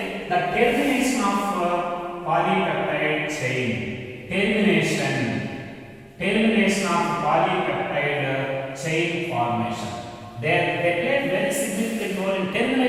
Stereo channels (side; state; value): both; identical; correlation 1.00